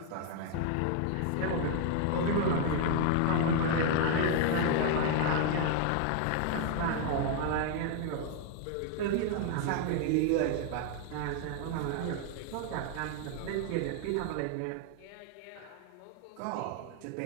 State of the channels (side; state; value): both; different; correlation 0.00